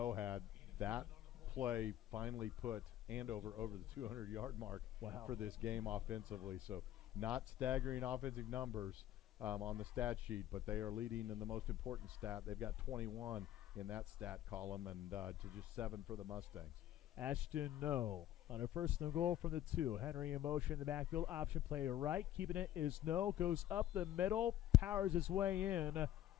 had, that play finally put Andover over the 200-yard mark for this game offensively. So not staggering offensive numbers on the stat sheet, but they are leading in the most important stat. They've got 21 in that stat column, and to just 7 for the Mustangs. Ashton No. On a first and goal from the 2. Henry in motion in the backfield. Option play to right. Keeping it is No. Goes up the middle. Powers his way in.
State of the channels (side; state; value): right; quieter; 12.4 dB